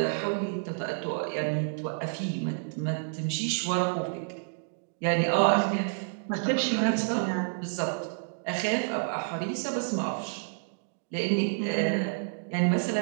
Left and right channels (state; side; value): silent; left; digital silence